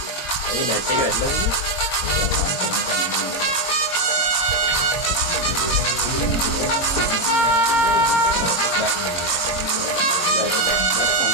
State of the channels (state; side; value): late; right; 22 ms